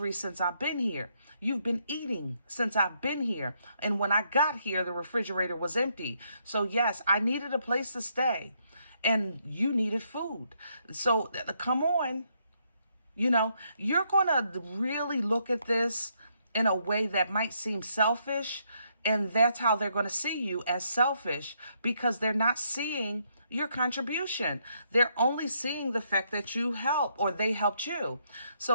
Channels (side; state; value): both; inverted; correlation -0.74